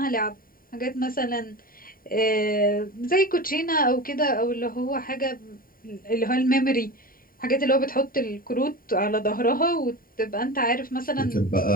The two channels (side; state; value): right; late; 0.41 ms